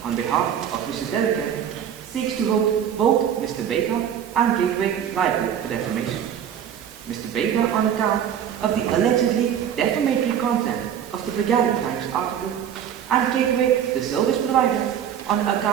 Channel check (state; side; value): quieter; left; 9.2 dB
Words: on behalf of Mr. Delicate, seeks to hold both Mr. Baker and Gateway liable for defamation. Mr. Baker on account of the allegedly defamatory content of the Brigadier Times article, and Gateway, the service provider, on